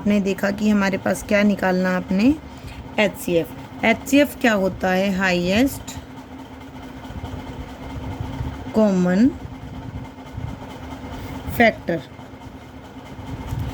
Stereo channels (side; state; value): both; identical; correlation 1.00